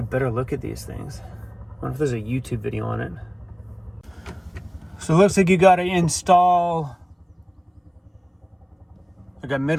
better look at these things. I wonder if there's a YouTube video on it. So it looks like you got to install like a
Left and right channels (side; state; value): both; identical; correlation 1.00